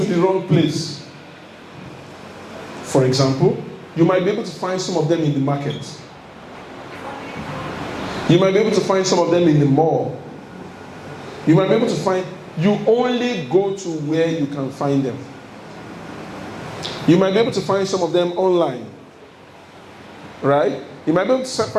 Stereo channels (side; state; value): both; identical; correlation 1.00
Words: the wrong place. For example, you might be able to find some of them in the market. You might be able to find some of them in the mall. You might be able to find, you only go to where you can find them. You might be able to find some of them online. Right? You might be able to